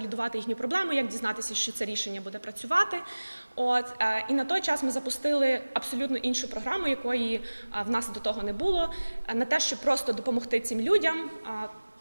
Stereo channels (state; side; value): inverted; both; correlation -1.00